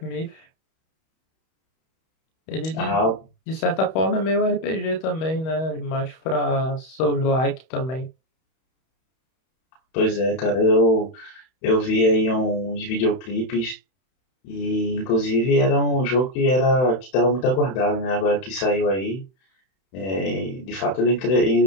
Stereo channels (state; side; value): late; right; 31 ms